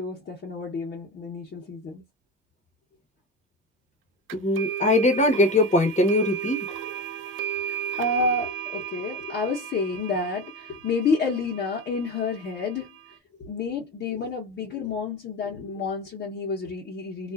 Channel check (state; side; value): normal; both; correlation 0.23